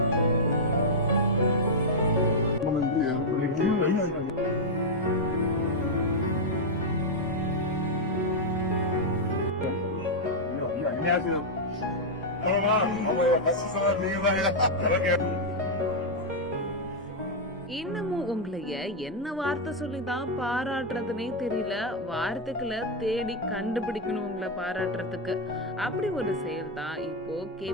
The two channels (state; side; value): normal; both; correlation -0.02